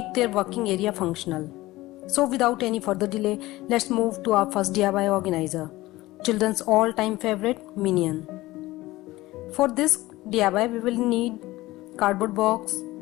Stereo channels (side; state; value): right; quieter; 18.4 dB